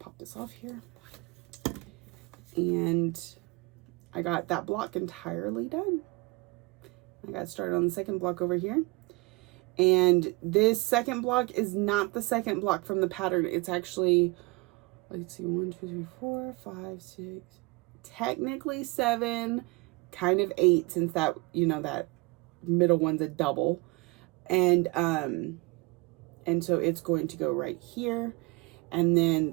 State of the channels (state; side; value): quieter; left; 25.7 dB